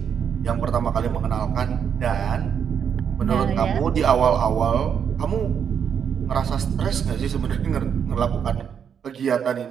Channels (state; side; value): quieter; left; 7.7 dB